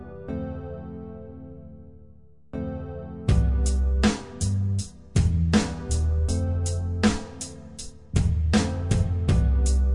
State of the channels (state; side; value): identical; both; correlation 1.00